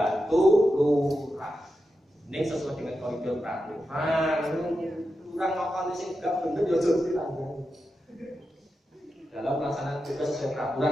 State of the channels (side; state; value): both; normal; correlation 0.89